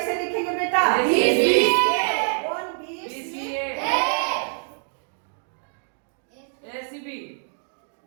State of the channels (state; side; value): silent; left; 58 dB below the other